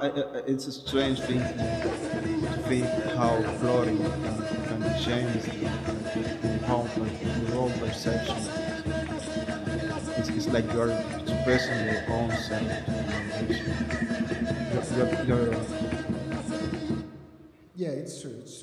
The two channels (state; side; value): identical; both; correlation 1.00